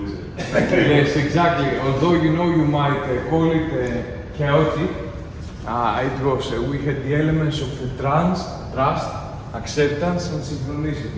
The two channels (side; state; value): both; identical; correlation 1.00